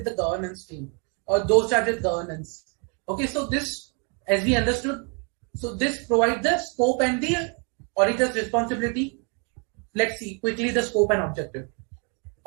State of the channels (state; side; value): quieter; left; 36.0 dB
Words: the governance team or those charged with governance. Okay, so this, as we understood, so this provides the scope and the auditor's responsibility. Let's see quickly the scope and objective.